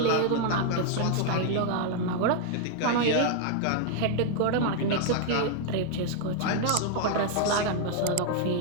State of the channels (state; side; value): different; both; correlation 0.00